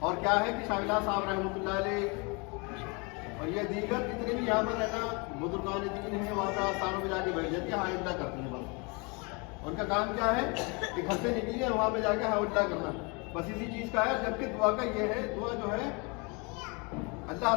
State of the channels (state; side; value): quieter; right; 30.5 dB